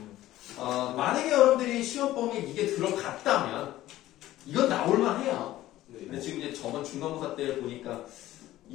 만약에 여러분들이 시험 범위에 이게 들어갔다면 이건 나올만 해요. 네. 근데 지금 이제 저번 중간고사 때 보니까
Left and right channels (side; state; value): right; quieter; 15.0 dB